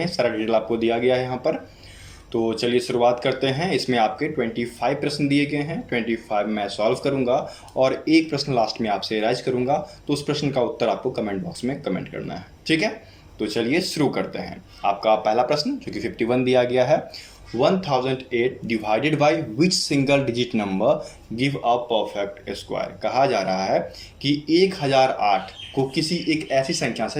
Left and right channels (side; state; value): both; identical; correlation 1.00